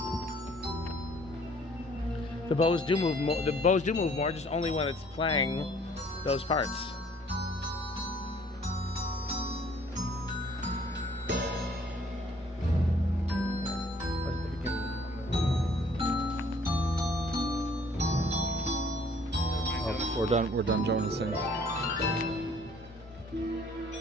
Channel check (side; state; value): both; normal; correlation 0.58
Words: there. The bows do move more. The bows do move more, just only when it's playing those parts. Oh, we're done. We're done Jonasing.